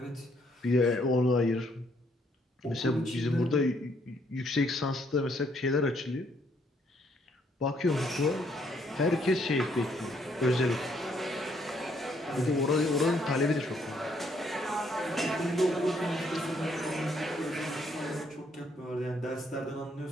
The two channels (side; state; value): both; normal; correlation 0.69